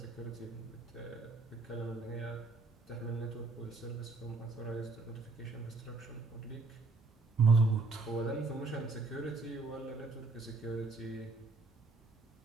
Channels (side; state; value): left; quieter; 3.7 dB